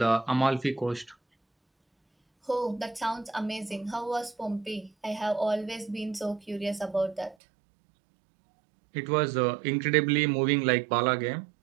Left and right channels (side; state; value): left; drops out; at 7.4 s